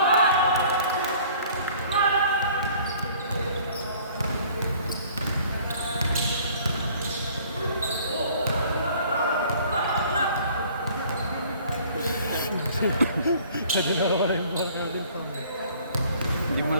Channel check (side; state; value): both; inverted; correlation -0.54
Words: Kasi nawawala yung buwan ka rin pa. Hindi mo